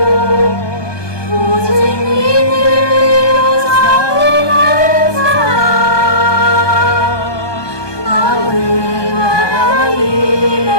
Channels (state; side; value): late; right; 1.2 ms